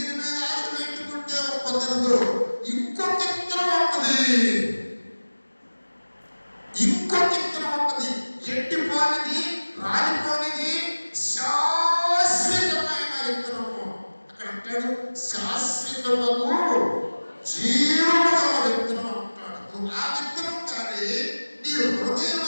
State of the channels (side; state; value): both; inverted; correlation -1.00